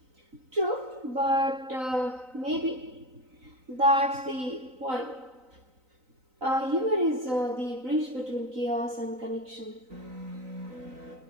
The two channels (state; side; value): late; left; 3.9 ms